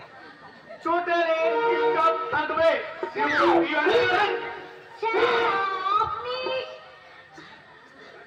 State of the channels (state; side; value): identical; both; correlation 1.00